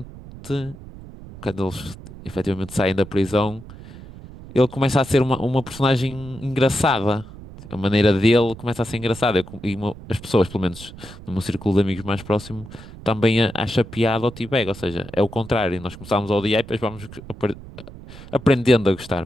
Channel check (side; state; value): right; noise; rumble, 16 dB below the sound